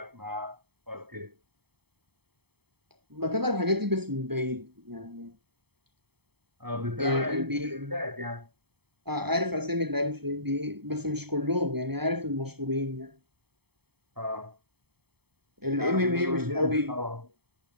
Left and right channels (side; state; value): left; late; 0.97 ms